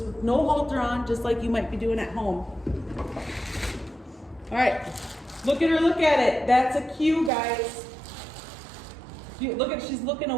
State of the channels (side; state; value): left; drops out; at 7.3 s